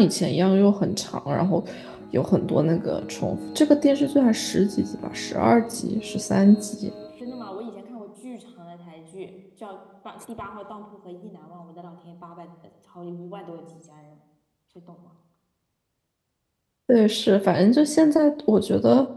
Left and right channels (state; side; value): identical; both; correlation 1.00